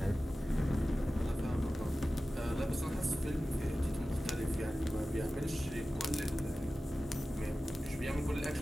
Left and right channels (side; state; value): both; normal; correlation 0.95